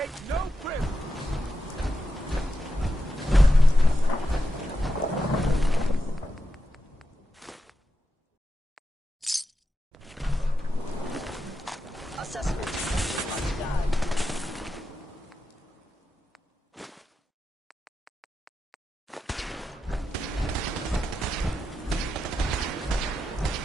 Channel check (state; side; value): normal; both; correlation 0.88